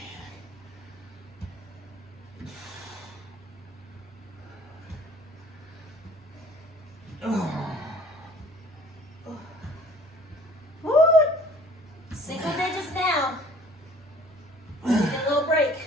Woo! Single digits now. Need a little break.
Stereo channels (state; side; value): normal; both; correlation 0.51